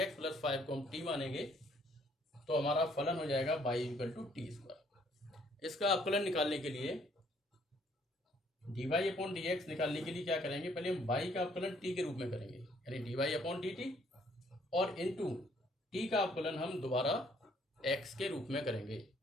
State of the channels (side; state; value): both; normal; correlation 0.64